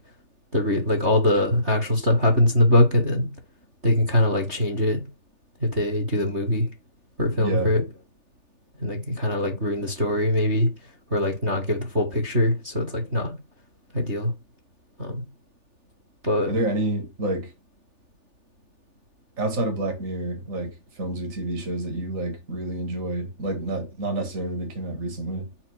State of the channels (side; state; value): left; late; 3.4 ms